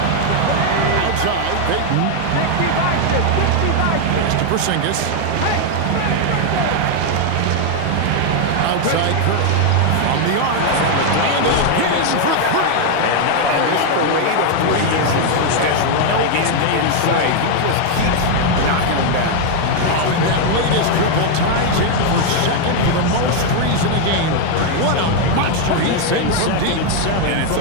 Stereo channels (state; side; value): different; both; correlation 0.01